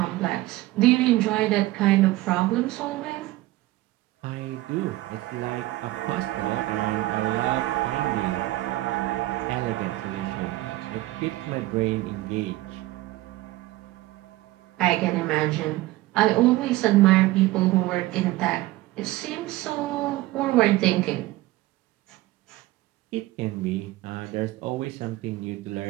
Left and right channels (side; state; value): left; quieter; 17.7 dB